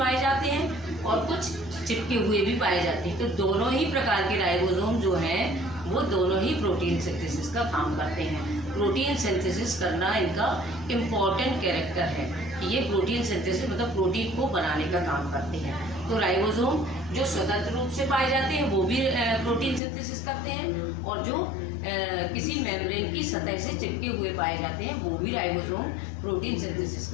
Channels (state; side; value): drops out; right; at 19.8 s